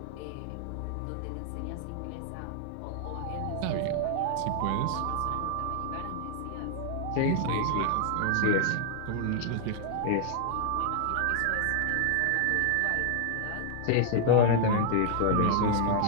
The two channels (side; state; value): both; different; correlation 0.00